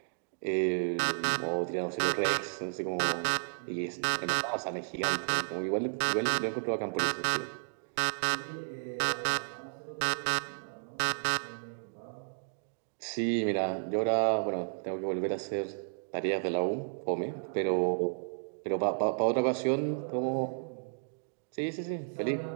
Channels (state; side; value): silent; left; digital silence